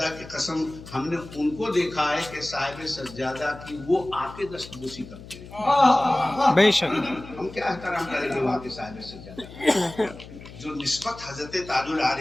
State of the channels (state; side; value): noise; left; hum, 16 dB below the sound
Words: کی قسم ہم نے ان کو دیکھا ہے کہ صاحب سجادہ کی وہ آ کے دستبوسی کرتے ہیں. بے شک ہم کیا احترام کریں گے وہاں کے صاحب سجادہ جو نسبت حضرت تاج